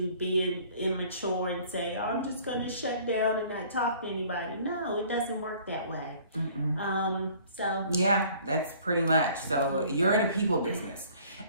being immature, and say, oh, I'm just going to shut down and not talk to anybody. No, it doesn't work that way. So yeah, that's pretty much. So you're in a people business,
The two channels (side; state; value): both; inverted; correlation -0.53